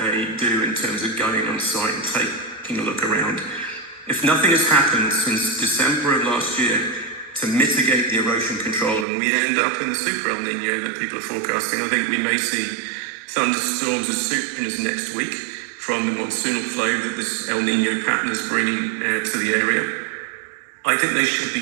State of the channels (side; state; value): left; drops out; at 9.1 s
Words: do in terms of going on site and taking a look around. If nothing has happened since December of last year to mitigate the erosion control and we end up in the super El Nino that people are forecasting, I think we may see thunderstorms as soon as next week from the monsoonal flow that this El Nino pattern is bringing to the area. I think they should